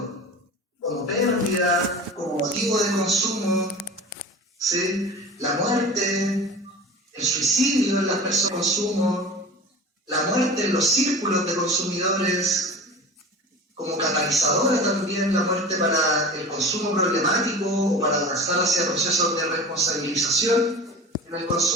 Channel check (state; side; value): normal; both; correlation 0.35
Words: como pérdida, como motivo de consumo, ¿sí? La muerte, el suicidio en las personas de consumo, la muerte en los círculos de consumidores, como catalizadora también, la muerte para el consumo problemático o para avanzar hacia procesos de responsabilización en el